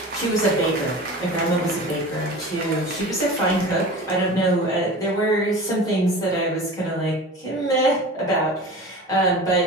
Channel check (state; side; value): normal; both; correlation 0.35